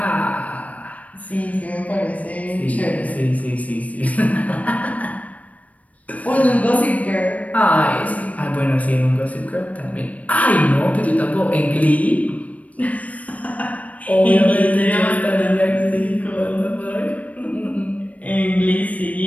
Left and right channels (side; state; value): right; late; 0.069 ms